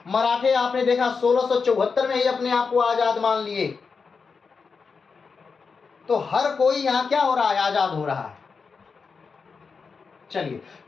मराठे आपने देखा 1674 में ही अपने आप को आजाद मान लिए। तो हर कोई यहां क्या हो रहा है, आजाद हो रहा है। चलिए,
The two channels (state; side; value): quieter; right; 5.2 dB